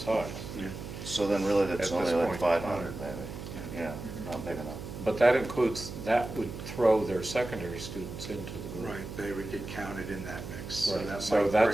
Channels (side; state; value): right; noise; hum, 9 dB below the sound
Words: Yeah. So then really that's At only this like point. 500 maybe. Yeah, not big enough. But that would throw their secondary students into the group. Right, they would get counted in that mix. Right. that So might